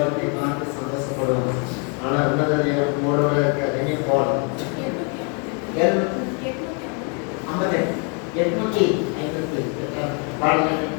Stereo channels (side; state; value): right; quieter; 36.9 dB